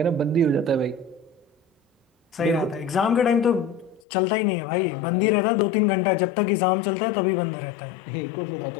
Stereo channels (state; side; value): drops out; right; at 4.0 s